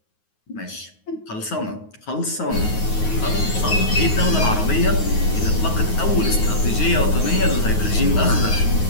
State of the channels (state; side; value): late; right; 9.4 ms